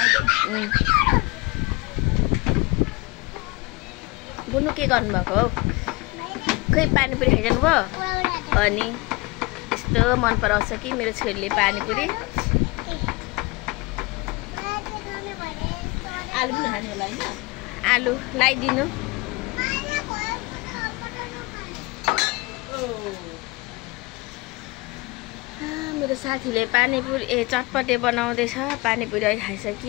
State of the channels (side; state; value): right; quieter; 24.0 dB